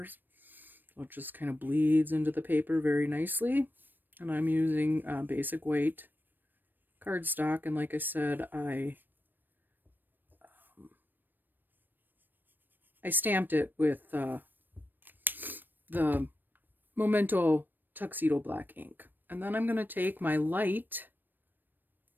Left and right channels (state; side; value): late; left; 0.092 ms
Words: So it just kind of bleeds into the paper very nicely. And I'm using basic weight cardstock, and like I said, I stamped it with the Memento Tuxedo Black ink. And then I'm going to take my light